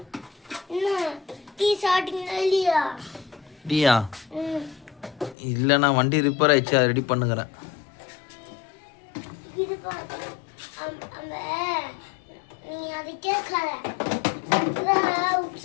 என்ன டீ சாப்பிட்டீங்களா இல்லையா? டீயா? இல்லை, நான் வண்டி ரிப்பேர் ஆயிடுச்சு, அதை ரெடி பண்ணுகிறேன். அந்த நீ அதை கேட்காத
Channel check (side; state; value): right; drops out; at 5.4 s